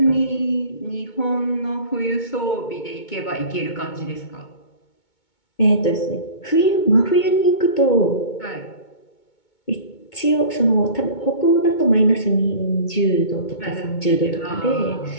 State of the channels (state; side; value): late; right; 2.2 ms